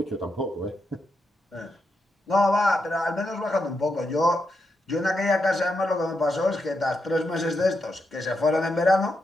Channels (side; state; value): both; normal; correlation 0.84